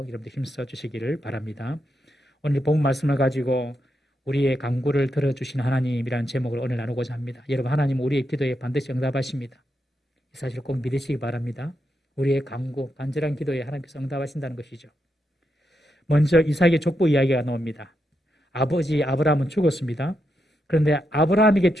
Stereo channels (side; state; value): both; normal; correlation 0.84